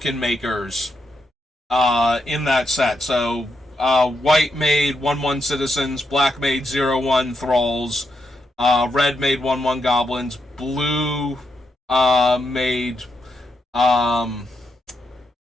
makers in that set. So white made 1/1 citizens, black made 0/1 thralls, red made 1/1 goblins, blue made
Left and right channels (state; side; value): normal; both; correlation 0.82